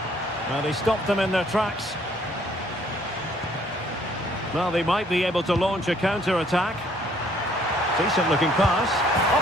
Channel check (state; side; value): normal; both; correlation 0.62